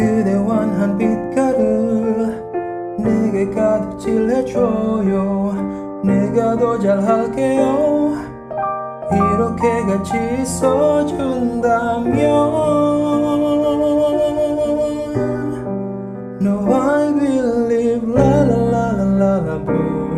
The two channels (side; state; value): both; identical; correlation 1.00